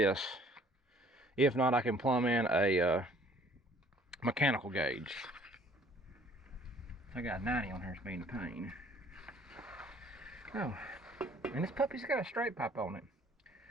If not, I can plumb in a mechanical gauge. I got 90 on here, it's being a pain. Oh, and this puppy's got a straight pipe on it.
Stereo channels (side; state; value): both; normal; correlation 0.57